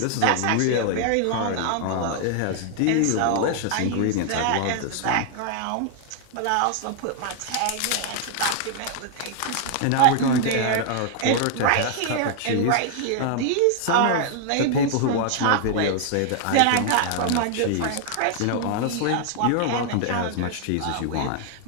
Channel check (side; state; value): both; different; correlation 0.00